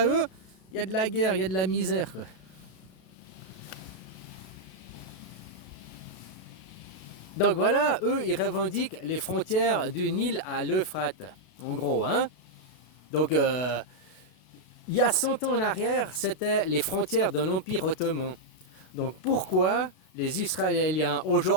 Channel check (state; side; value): late; right; 32 ms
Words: eux, il y a de la guerre, il y a de la misère, quoi. Donc voilà, eux, ils revendiquent les frontières du Nil à l'Euphrate, en gros, hein. Donc, il y a 100 ans en arrière, c'était les frontières de l'Empire ottoman. Donc pourquoi les Israéliens